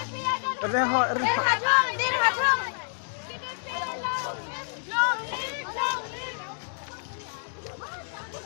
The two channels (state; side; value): silent; right; digital silence